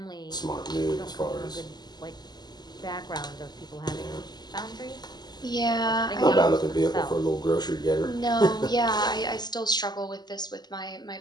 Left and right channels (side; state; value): right; late; 0.20 ms